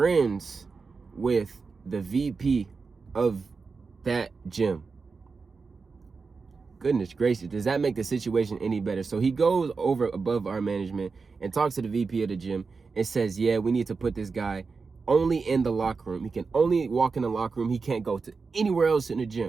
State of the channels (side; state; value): left; quieter; 4.7 dB